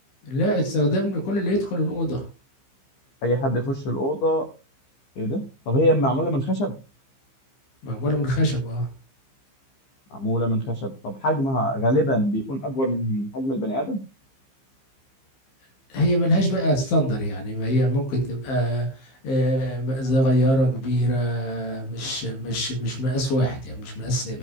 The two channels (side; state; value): right; late; 15 ms